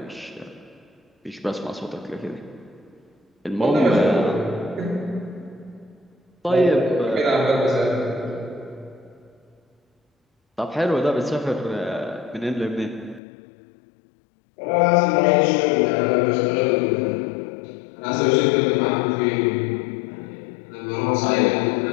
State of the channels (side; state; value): right; drops out; at 13.2 s